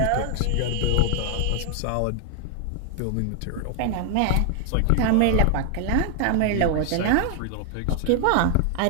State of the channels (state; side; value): different; both; correlation 0.00